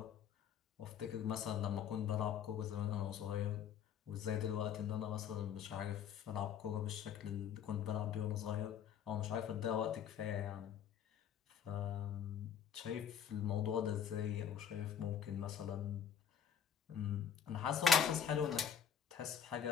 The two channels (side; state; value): right; quieter; 8.4 dB